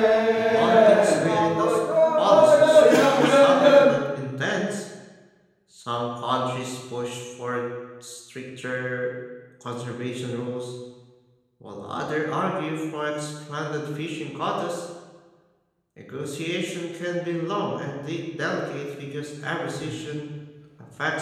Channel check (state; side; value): identical; both; correlation 1.00